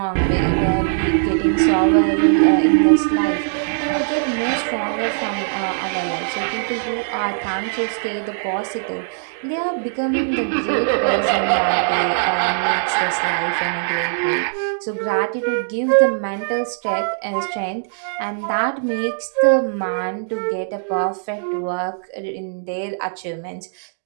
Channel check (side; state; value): left; silent; digital silence